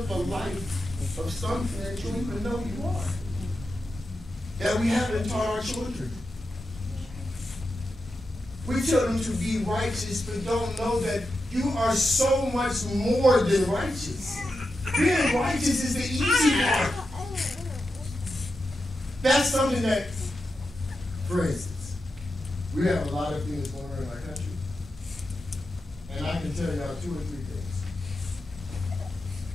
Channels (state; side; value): normal; both; correlation 0.89